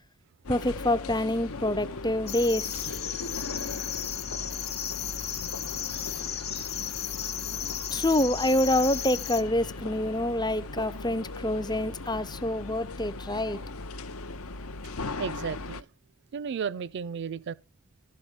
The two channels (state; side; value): normal; both; correlation 0.50